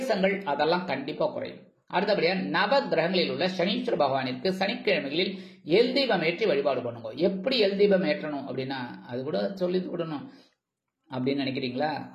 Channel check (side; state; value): both; identical; correlation 1.00